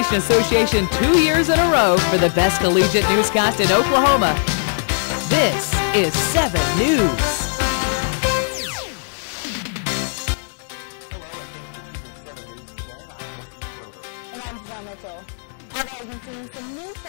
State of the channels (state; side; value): silent; right; digital silence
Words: Association 2 years in a row for the best collegiate newscast in Oklahoma. This is 7 News. Hello, and thank you for choosing 7 News today. I'm Jesse Schroeder. And I'm Janelle Mitchell. Alva has been seeing some new